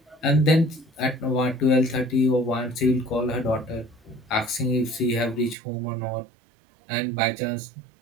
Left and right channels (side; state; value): left; drops out; at 5.6 s